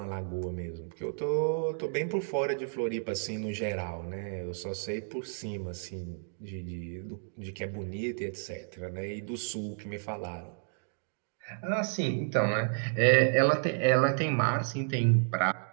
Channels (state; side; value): silent; left; digital silence